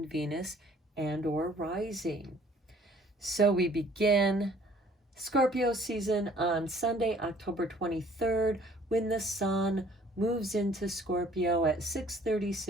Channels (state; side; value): normal; both; correlation 0.56